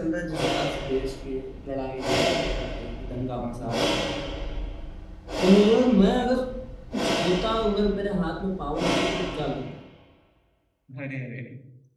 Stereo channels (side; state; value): both; identical; correlation 1.00